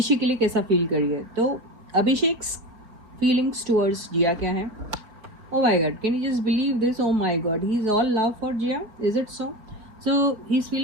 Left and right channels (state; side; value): late; left; 4.4 ms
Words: के लिए कैसा फील करिए। तो अभिषेक फीलिंग्स टुवर्ड्स जिया क्या है? Oh my God, can you just believe this? Oh my God, he's all love for Jia. Is it so? So he's